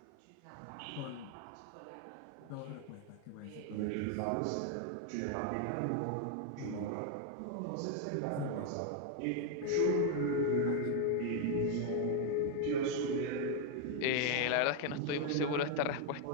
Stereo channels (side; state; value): both; different; correlation 0.00